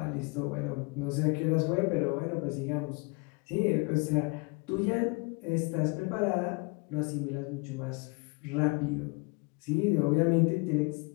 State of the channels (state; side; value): quieter; right; 30.9 dB